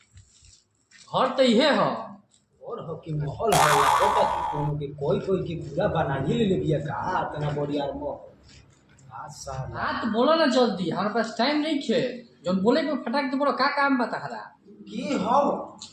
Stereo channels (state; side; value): identical; both; correlation 1.00